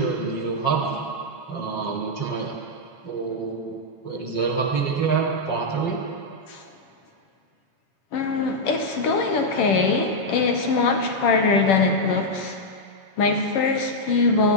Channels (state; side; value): late; right; 7.3 ms